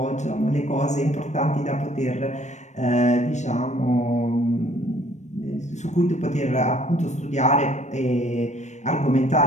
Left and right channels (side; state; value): right; late; 0.34 ms